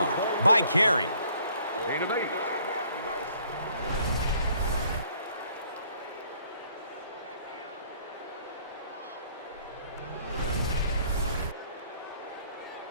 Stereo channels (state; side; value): inverted; both; correlation -0.61